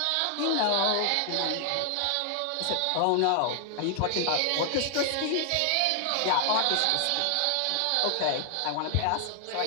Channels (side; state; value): both; different; correlation 0.00